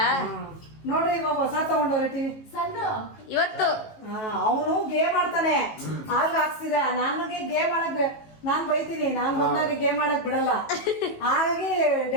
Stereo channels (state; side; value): late; right; 18 ms